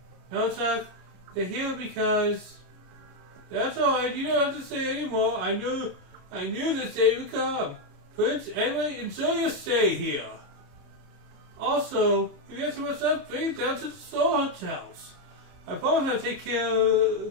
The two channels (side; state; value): left; late; 33 ms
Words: No, Chuck. They're here because... That's alright, you don't have to say anymore. I knew this day would come. Prince, anyway, enjoy your stay here. Also, if you have too much up, bring it down to the Soul Hotels. I promise I'll take care